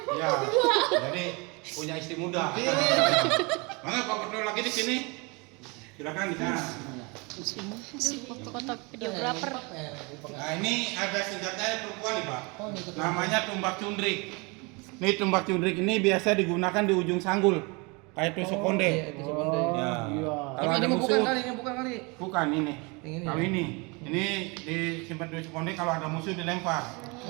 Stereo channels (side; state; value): left; quieter; 28.8 dB